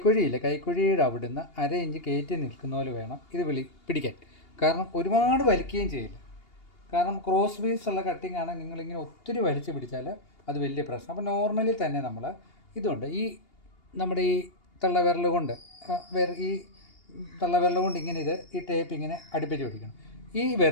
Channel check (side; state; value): right; late; 2.8 ms